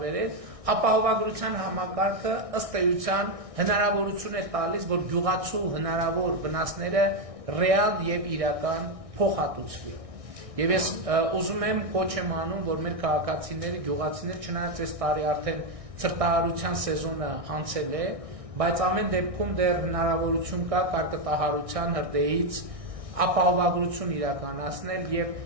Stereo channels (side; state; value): left; late; 1.6 ms